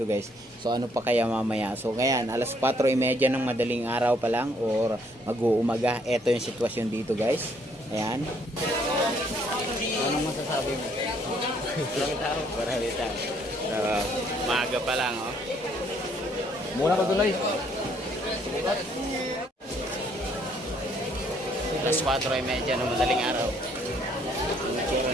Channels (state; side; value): normal; both; correlation 0.66